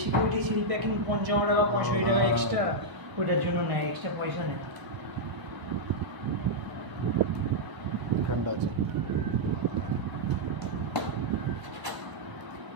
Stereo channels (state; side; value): late; left; 1.0 ms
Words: সিকিউরিটি সিল প্যাকিং 55 টাকা 65 টাকা এক্সট্রা, ওইটার জন্য নেয়, এক্সট্রা পয়সা নেয়। ঠান্ডা আছে।